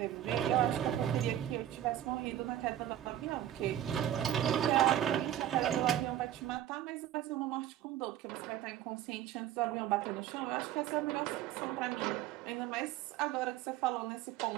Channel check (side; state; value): left; quieter; 11.8 dB